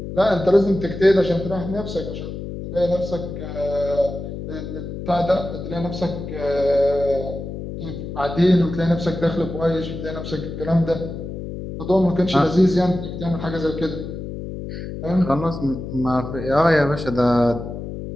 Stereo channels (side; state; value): left; noise; hum, 8 dB below the sound